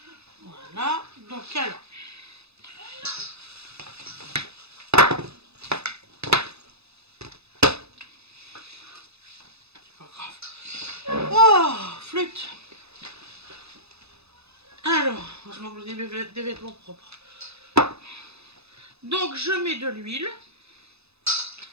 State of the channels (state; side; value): late; left; 0.79 ms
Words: Voilà. Donc alors. C'est pas grave. Oh, flûte. Alors, je manque des vêtements propres. Donc je mets de l'huile.